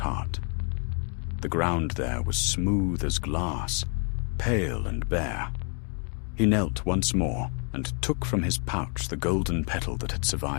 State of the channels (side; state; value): right; quieter; 38.2 dB